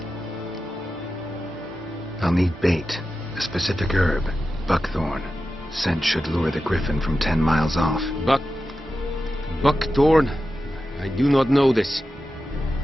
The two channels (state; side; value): normal; both; correlation 0.92